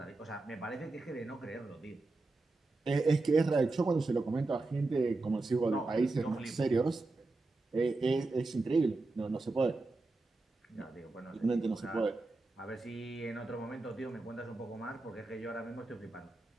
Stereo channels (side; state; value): left; quieter; 3.3 dB